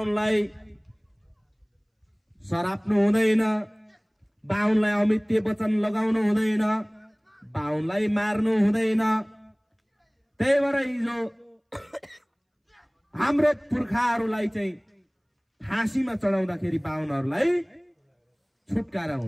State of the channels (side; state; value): both; identical; correlation 1.00